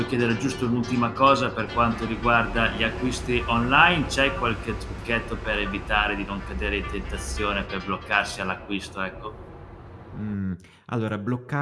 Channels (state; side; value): identical; both; correlation 1.00